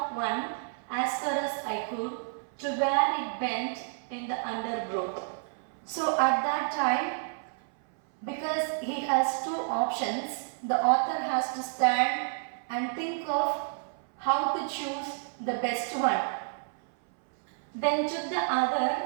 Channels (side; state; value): left; silent; 58 dB below the other